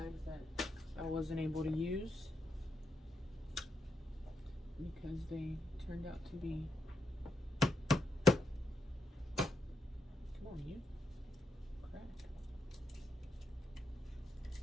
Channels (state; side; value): normal; both; correlation 0.81